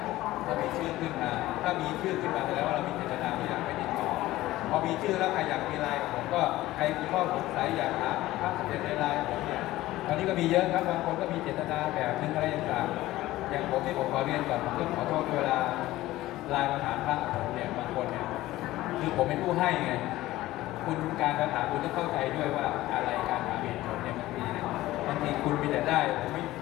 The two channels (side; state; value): right; quieter; 16.6 dB